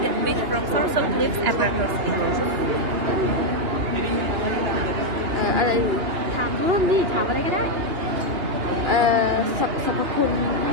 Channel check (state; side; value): late; left; 2.9 ms